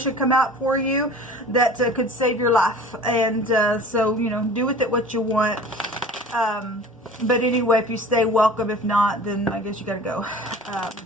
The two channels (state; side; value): normal; both; correlation 0.42